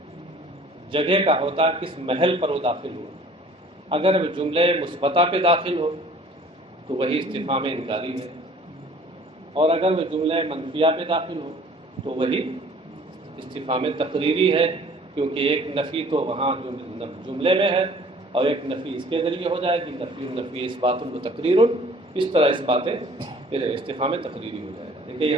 جگہ کا ہوتا ہے، کس محل پر وہ داخل ہو. اگر وہ جملے مثبتہ پہ داخل ہو تو وہی استفہام انکاری ہے، اور اگر وہ جملے منفیہ پہ داخل ہو تو وہی استفہام تقریری ہے، کیونکہ ایک نفی تو وہاں جملے میں ہے اور ایک نفی اس کے ذریعے ہو جائے گی. نفی اس بات و تقریر، اس طرح اس باتیں پھر استفہام تقریری ہو جائے گا. دیکھیے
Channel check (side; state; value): both; normal; correlation 0.52